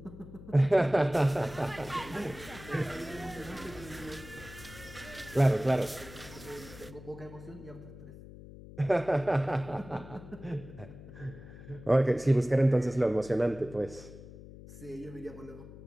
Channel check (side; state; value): left; noise; hum, 16 dB below the sound